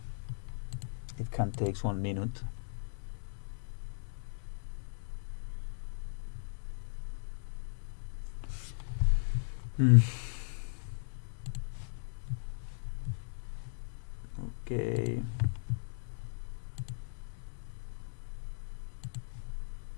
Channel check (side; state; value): right; silent; digital silence